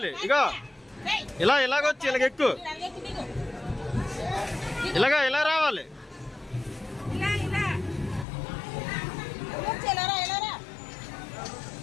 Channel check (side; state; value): right; drops out; at 8.2 s